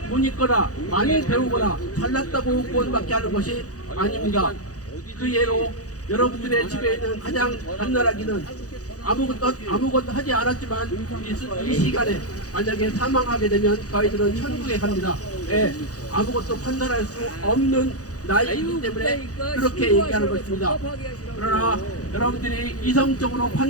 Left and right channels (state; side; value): late; right; 0.67 ms